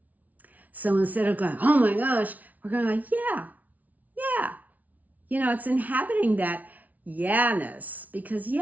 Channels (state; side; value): late; left; 0.074 ms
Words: So instead of going, oh my gosh, we're going like, yeah. It's inhabiting that yeah-ness because,